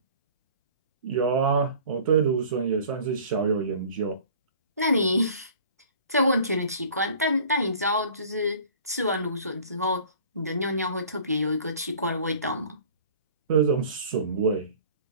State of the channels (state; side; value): inverted; both; correlation -0.47